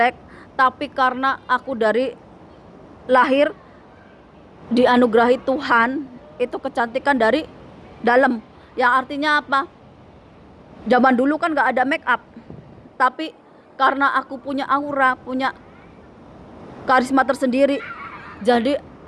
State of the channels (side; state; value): both; identical; correlation 1.00